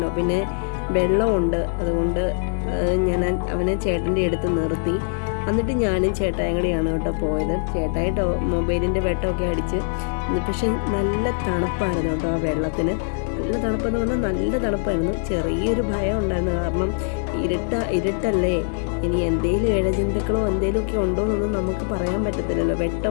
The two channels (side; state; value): right; silent; digital silence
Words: പിന്നെ വെള്ളമുണ്ട്, അതുകൊണ്ട് ഞാൻ അവനെ ചേട്ടൻ്റെ അടുത്ത് നിർത്തി. എന്നിട്ട് ഞാനും ചേട്ടായും കൂടിയാണ് കേട്ടോ പോയത്. ചേട്ടായിട്ട് മൊബൈലിൻ്റെ വെട്ടമൊക്കെ അടിച്ച്, പക്ഷെ നല്ല തണുപ്പായിരുന്നു കേട്ടോ ആ വെള്ളത്തിന്. നല്ല തണുപ്പെന്ന് പറഞ്ഞാൽ നല്ല തണുപ്പായിരുന്നു. ചെറിയൊരു ഭയം ഉണ്ടായിരുന്നു, കാരണം ഇരുട്ടല്ലേ, ഇനി എന്തെങ്കിലും ഇഴജന്തുക്കളോ എന്തെങ്കിലുമൊക്കെ ഉണ്ടോ എന്നൊന്നും നമുക്ക് പറയാൻ പറ്റത്തില്ലല്ലോ,